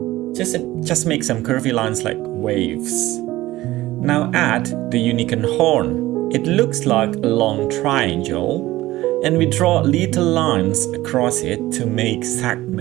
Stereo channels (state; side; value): quieter; left; 17.0 dB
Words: Just make some curvy lines like waves. Now add the unicorn horn. It looks like a long triangle, and we draw little lines across it to make